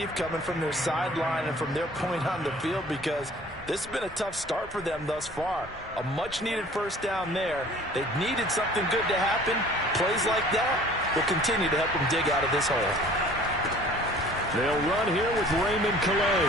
coming from their sideline and from their point on the field, because this has been a tough start for them thus far. A much-needed first down there. They needed something good to happen. Plays like that will continue to help them dig out of this hole. They'll run here with Raymond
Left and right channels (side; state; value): both; normal; correlation 0.50